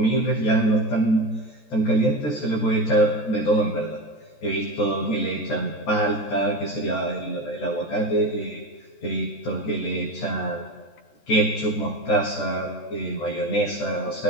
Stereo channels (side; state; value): right; late; 14 ms